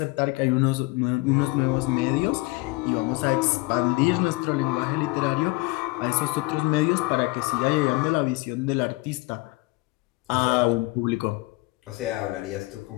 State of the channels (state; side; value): quieter; right; 23.6 dB